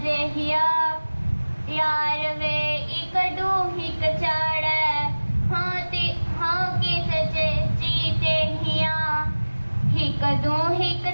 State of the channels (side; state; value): both; inverted; correlation -1.00